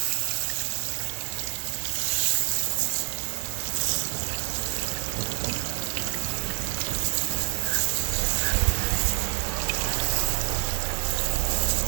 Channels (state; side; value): silent; left; digital silence